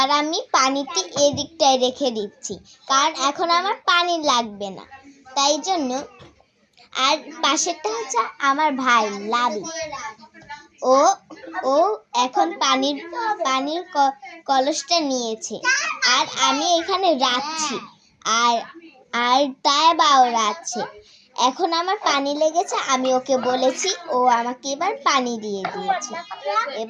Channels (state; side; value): identical; both; correlation 1.00